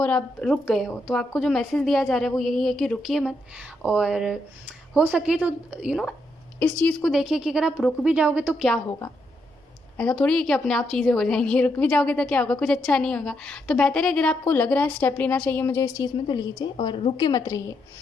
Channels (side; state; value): both; normal; correlation 0.79